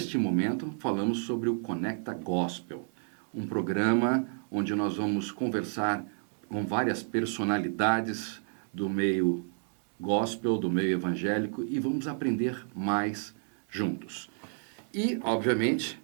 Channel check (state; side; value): silent; left; 57 dB below the other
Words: momento falamos sobre o Conecta Gospel. Um programa onde nós vamos conversar com várias personalidades do meio gospel, do meio evangélico e vamos aprender mais juntos. E, obviamente,